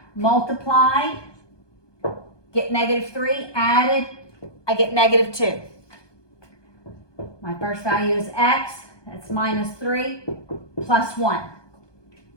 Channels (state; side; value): late; right; 1.2 ms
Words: multiply, get negative 3, added, I get negative 2. My first value is x, that's minus 3 plus 1.